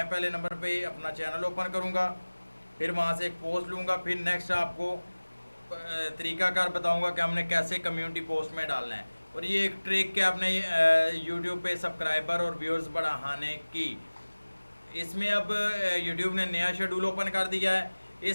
पहले नंबर पे अपना चैनल ओपन करूँगा, फिर वहाँ से एक पोस्ट लूँगा, फिर नेक्स्ट आपको तरीकाकार बताऊँगा कि हमने कैसे कम्युनिटी पोस्ट में डालना है। और ये एक ट्रिक है अपने यूट्यूब पे सब्सक्राइबर और व्यूअर्स बढ़ाने की। इसमें अब यूट्यूब ने नया शेड्यूल ओपन कर दिया है।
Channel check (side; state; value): both; inverted; correlation -1.00